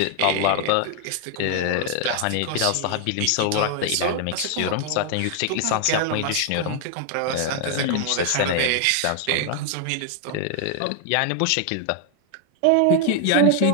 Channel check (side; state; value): both; different; correlation 0.00